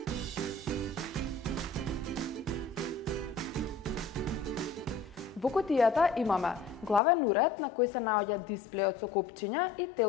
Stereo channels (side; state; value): right; drops out; at 7.0 s